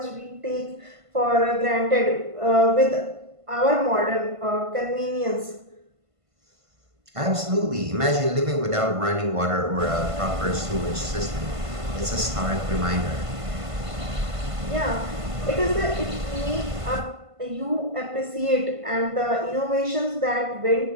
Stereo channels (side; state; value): left; late; 1.5 ms